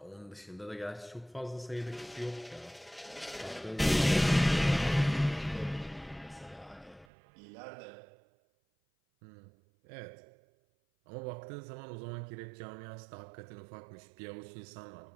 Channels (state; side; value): drops out; left; at 7.1 s